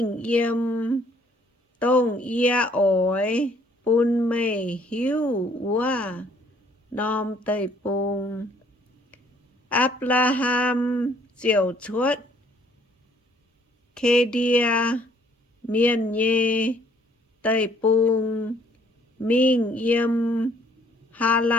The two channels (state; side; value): normal; both; correlation 0.62